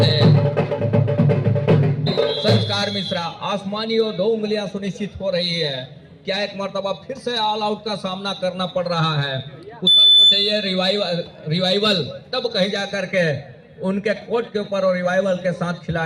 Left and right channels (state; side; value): identical; both; correlation 1.00